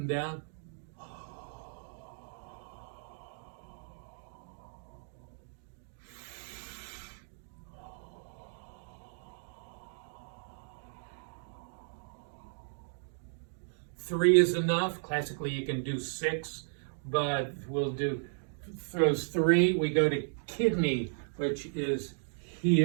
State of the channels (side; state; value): left; silent; digital silence